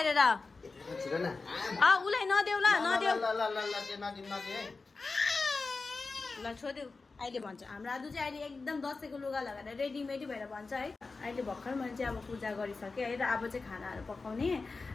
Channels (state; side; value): quieter; right; 4.0 dB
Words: छिटो न उसलाई नदेऊ ल नदेऊ ल छोड्देऊ। अहिले भन्छ हाम्रो आदु चाहिँ अहिले एकदम दसैँको लुगा लगाएर रेडीमेडी भएर भन्छ है। अहिले भर्खर मैले चाहिँ अब पूजा गरिसकेँ है। र अब चाहिँ खानाहरू पकाउने